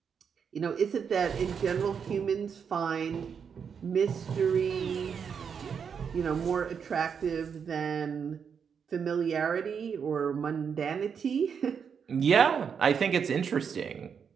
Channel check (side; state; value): left; quieter; 6.8 dB